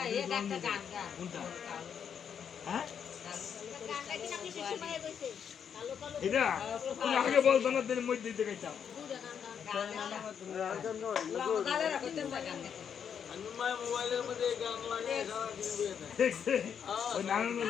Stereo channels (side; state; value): right; quieter; 7.8 dB